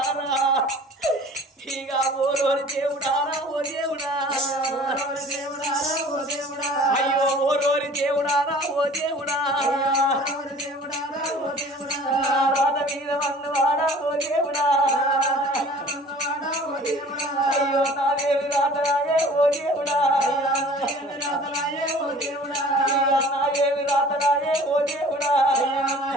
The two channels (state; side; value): normal; both; correlation 0.47